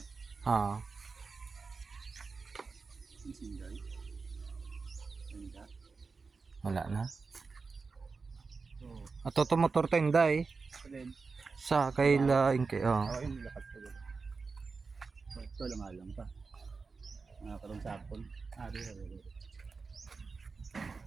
Oo. Sinday. Wala na. So, Ato to motor tenda eh. then, Sa kay laing kay yung lakat ko. So, ito lang alam pa. Mga karong sapon. Ari.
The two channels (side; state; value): left; quieter; 4.5 dB